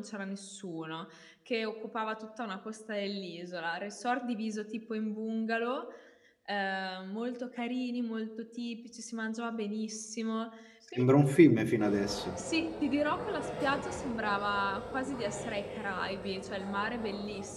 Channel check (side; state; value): both; identical; correlation 1.00